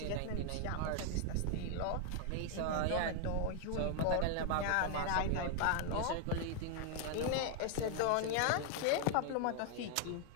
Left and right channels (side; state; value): both; different; correlation 0.00